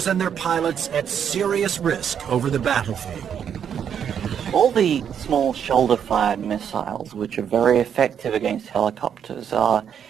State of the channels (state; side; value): quieter; left; 8.3 dB